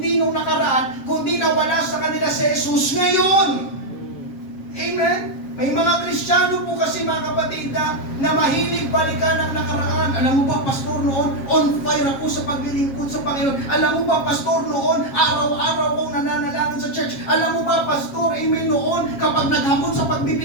nung nakaraan, kundi nawala sa kanila si Jesus ngayon. Amen? May mga Kristiyano po kasi, mga kapatid, na mahilig balikan ang nakaraan. Alam mo ba, pastor, noon, on fire ako sa paglilingkod sa Panginoon. Alam mo ba, pastor, noon, araw-araw akong nananalangin sa church. Alam mo ba, pastor, amen, noon, kapag naghamon sa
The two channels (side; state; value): right; late; 7.4 ms